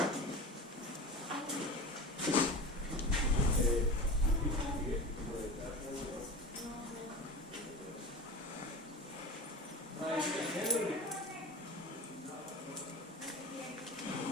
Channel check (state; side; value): normal; both; correlation 0.31